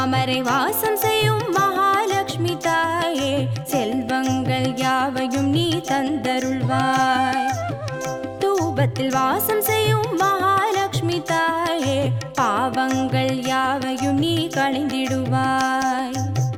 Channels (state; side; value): identical; both; correlation 1.00